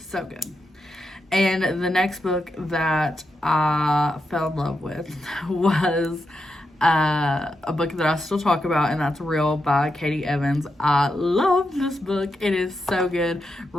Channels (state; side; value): normal; both; correlation 0.86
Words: good. And the next book that I fell in love with was a book that I still talk about, and that's Real by Katie Evans. I love this book. It is so good.